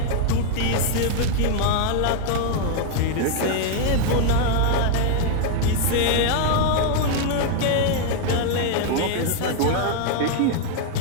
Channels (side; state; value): both; different; correlation 0.00